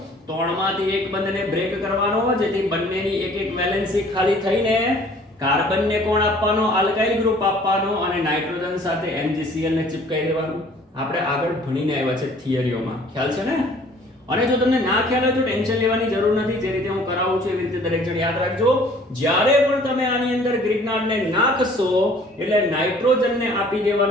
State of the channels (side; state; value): both; normal; correlation 0.54